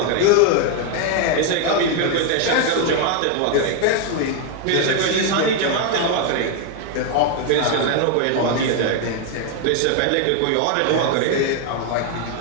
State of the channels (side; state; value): both; different; correlation 0.01